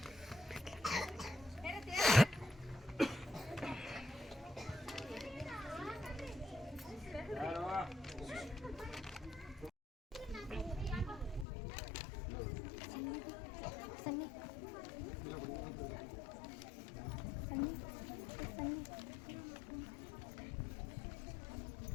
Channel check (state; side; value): drops out; right; at 11.5 s